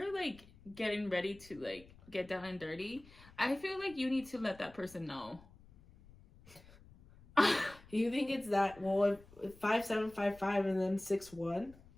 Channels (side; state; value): left; noise; rumble, 23 dB below the sound